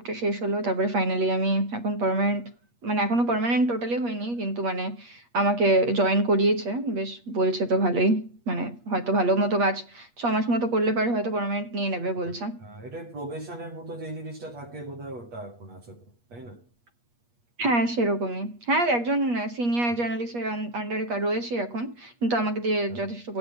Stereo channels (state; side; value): late; left; 8.4 ms